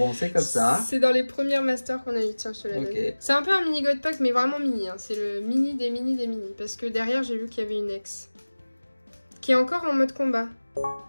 c'est comme ça. C'est dans les premières masters qu'on a eu. Tiens, je te la donne. Ok. C'est un peu un mini God Pack, mais vraiment mini. Hein. C'est le mini des mini des mini. Parce que derrière, j'ai vu qu'il y avait une ex. Qui est encore en mode combat.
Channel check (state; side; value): inverted; both; correlation -1.00